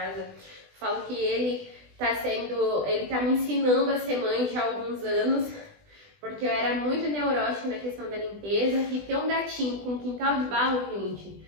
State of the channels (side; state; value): left; late; 20 ms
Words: Falo que ele tá me ensinando a ser mãe já há alguns anos, porque eu era muito neurótica na questão da limpeza, e ter um gatinho com quintal de barro, gente,